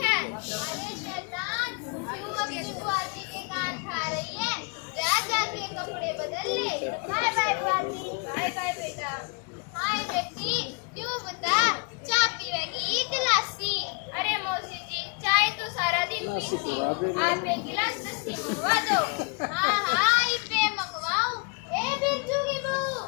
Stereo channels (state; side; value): quieter; right; 33.7 dB